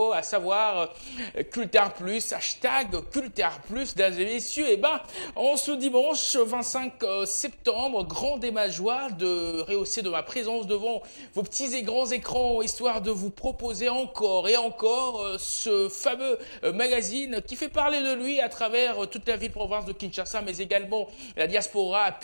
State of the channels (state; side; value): inverted; both; correlation -1.00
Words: à savoir Cultart Plus, hashtag Cultart Plus, mesdames et messieurs. Et ben, en ce dimanche 25 septembre, grande est ma joie de rehausser de ma présence devant vos petits et grands écrans, histoire de vous proposer encore et encore ce fameux magazine qui fait parler de lui à travers toute la ville-province de Kinshasa, mais également la diaspora a